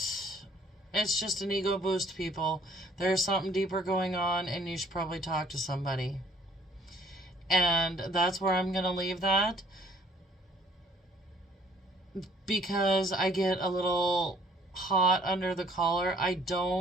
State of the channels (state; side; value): normal; both; correlation 0.59